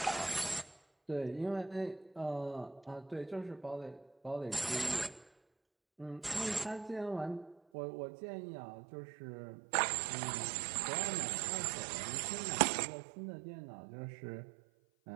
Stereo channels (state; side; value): drops out; left; at 7.6 s